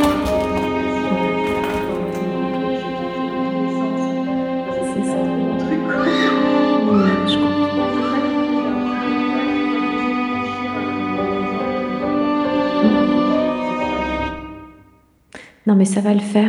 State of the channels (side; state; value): both; identical; correlation 1.00